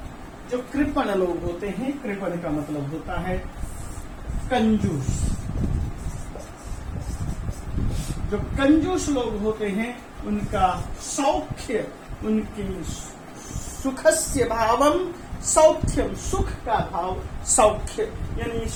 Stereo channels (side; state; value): both; identical; correlation 1.00